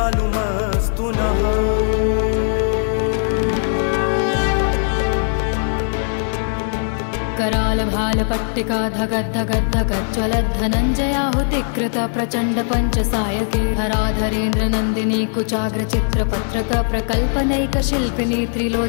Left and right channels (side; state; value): right; silent; digital silence